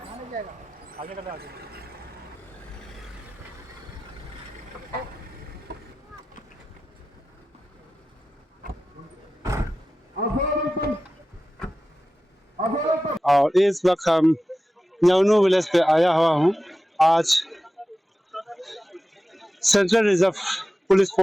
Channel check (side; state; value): both; normal; correlation 0.94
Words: और इस वक्त हम न्योनू विलेज पे आया हुआ हूँ। आज central reserve police